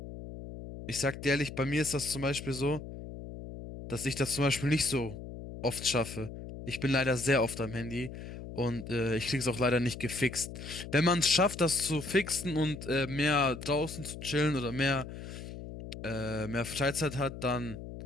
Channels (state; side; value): noise; left; hum, 11 dB below the sound